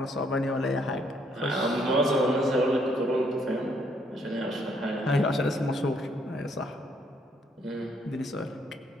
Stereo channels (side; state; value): both; normal; correlation 0.69